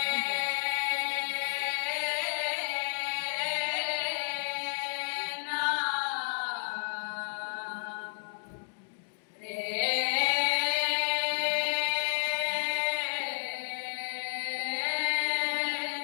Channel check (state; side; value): silent; right; digital silence